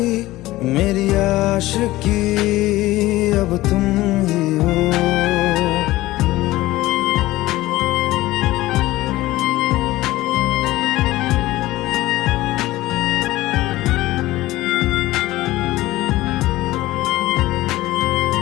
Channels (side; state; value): right; quieter; 17.5 dB